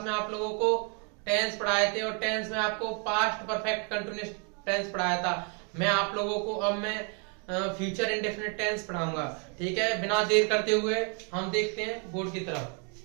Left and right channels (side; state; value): left; quieter; 37.1 dB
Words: में आप लोगों को टेंस पढ़ाए थे और टेंस में आपको पास्ट परफेक्ट कंटिन्यूअस टेंस पढ़ाया था। मैं आप लोगों को अब मैं फ्यूचर इंडेफिनिट टेंस पढ़ाऊंगा। ठीक है, बिना देर करते हुए हम देखते हैं बोर्ड की तरफ।